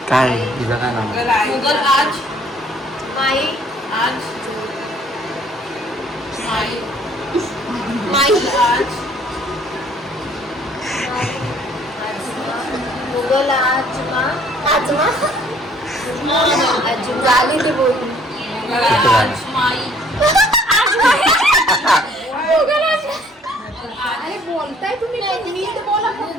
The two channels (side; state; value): both; normal; correlation 0.59